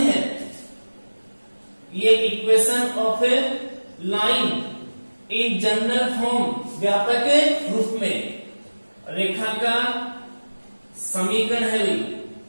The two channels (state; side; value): inverted; both; correlation -1.00